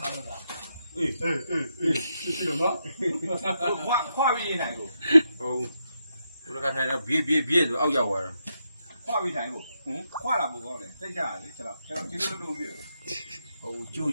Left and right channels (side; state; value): both; inverted; correlation -0.82